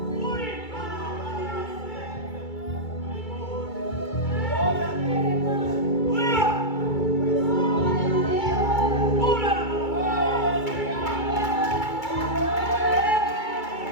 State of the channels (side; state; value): right; late; 2.3 ms